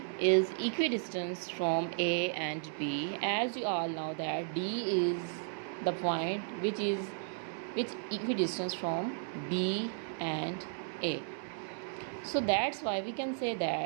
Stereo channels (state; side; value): silent; left; 55 dB below the other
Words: is equidistant from A and B. As you all know that D is the point which equidistant from B and A. So that's why we can say